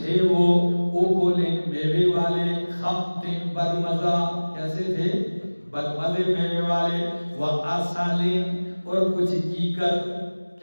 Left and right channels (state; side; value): inverted; both; correlation -1.00